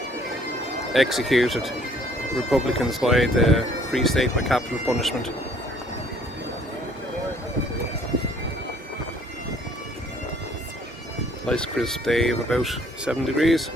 executed Republicans by the Free State by capital punishment. Nice crisp day of about 7 degrees,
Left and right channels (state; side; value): normal; both; correlation 0.60